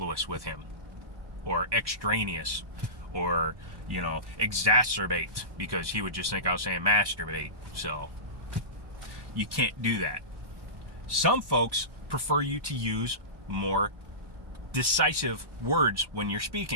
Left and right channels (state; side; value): late; left; 1.2 ms